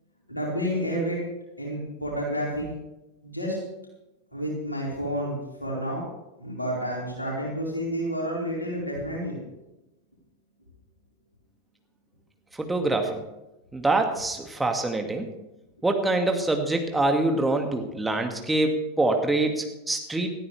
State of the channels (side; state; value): both; normal; correlation 0.42